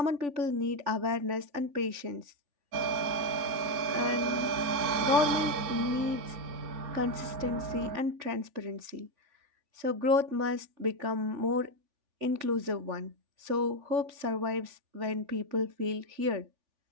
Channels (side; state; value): left; late; 3.5 ms